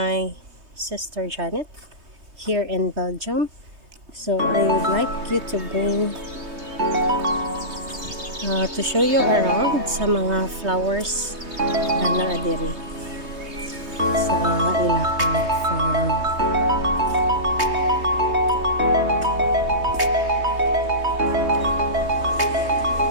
sister Janet here in Belgium. So I would like you to bring to show you around sa mga flowers na naadiri sa ilahang farm.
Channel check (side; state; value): left; late; 3.2 ms